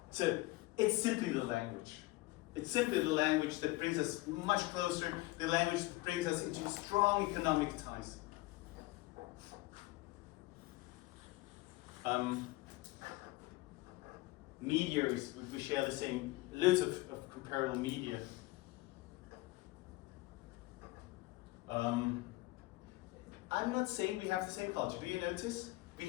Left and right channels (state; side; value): quieter; right; 20.4 dB